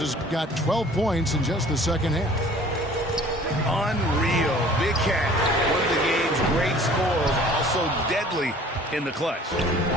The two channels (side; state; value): both; normal; correlation 0.50